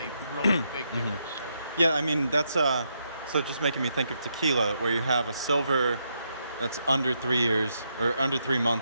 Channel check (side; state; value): both; inverted; correlation -0.79